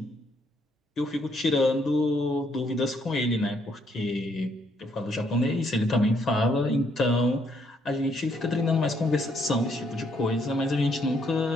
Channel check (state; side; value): normal; both; correlation 0.71